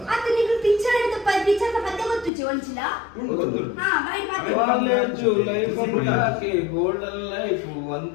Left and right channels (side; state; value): right; drops out; at 2.3 s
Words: ಪಿಕ್ಚರ್ ದ ಪದ್ಯ ಗೊತ್ತುಜಿ ಒಂಚಿಲ ಹಾ ಬೈ ಕಾಲೇಜ್ ಲೈಫ್ ಬಿಡಾಕೆ ಗೋಲ್ಡನ್ ಲೈಫ್